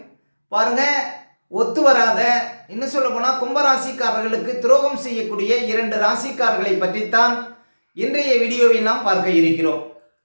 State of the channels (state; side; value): inverted; both; correlation -1.00